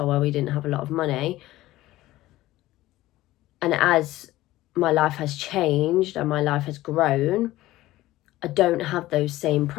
where we didn't have a lot of money. And as my life has changed and my life has grown, I don't have those same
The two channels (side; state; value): right; quieter; 16.6 dB